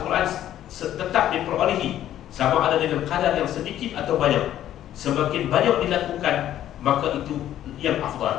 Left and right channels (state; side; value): quieter; right; 11.9 dB